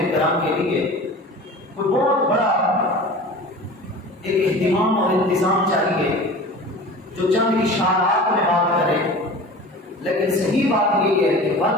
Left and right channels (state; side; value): normal; both; correlation 0.37